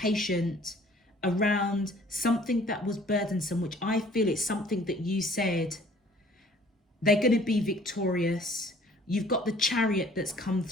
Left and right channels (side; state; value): both; normal; correlation 0.54